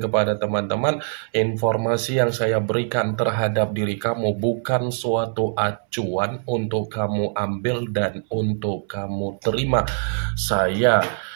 kepada teman-teman, informasi yang saya berikan terhadap diri kamu bukan suatu acuan untuk kamu ambil dan untuk kamu terima. Saya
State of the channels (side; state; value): left; silent; 63 dB below the other